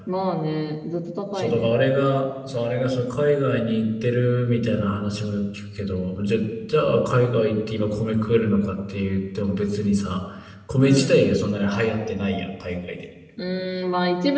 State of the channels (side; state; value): both; identical; correlation 1.00